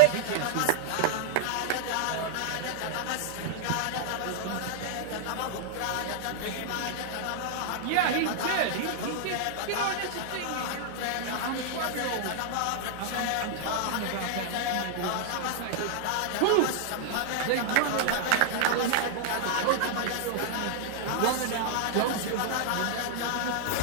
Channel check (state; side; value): different; both; correlation -0.01